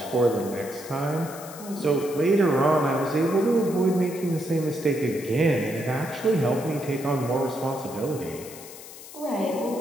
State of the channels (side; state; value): left; noise; hiss, 15 dB below the sound